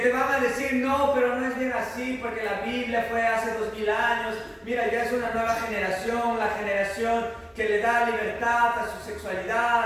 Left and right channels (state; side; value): identical; both; correlation 1.00